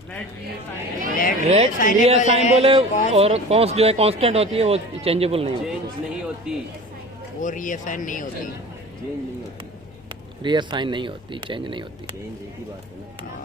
रेट रीअसाइन बोले और कॉन्स्ट जो है कांस्टेंट होती है, वो चेंजेबल नहीं होती। चेंज नहीं होती, वो रीअसाइन नहीं होती। चेंज नहीं होती, रीअसाइन नहीं होती, चेंज नहीं होती। चेंज एक ही बात है ना।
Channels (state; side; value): normal; both; correlation 0.37